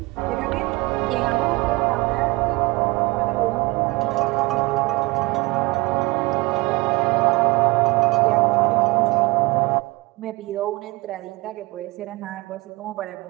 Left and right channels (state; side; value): quieter; left; 22.9 dB